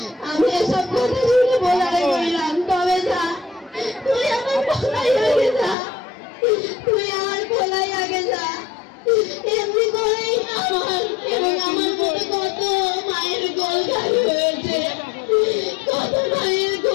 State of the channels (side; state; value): right; drops out; at 5.8 s